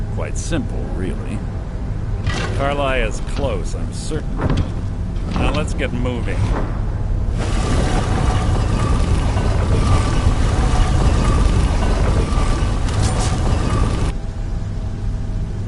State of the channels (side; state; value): both; identical; correlation 1.00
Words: Quite simple, really. Carlia's close, I'm certain. Now let's get moving.